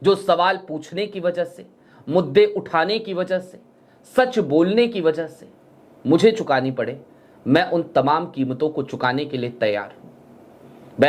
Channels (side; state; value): both; identical; correlation 1.00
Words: जो सवाल पूछने की वजह से, मुद्दे उठाने की वजह से, सच बोलने की वजह से मुझे चुकानी पड़े, मैं उन तमाम कीमतों को चुकाने के लिए तैयार हूं।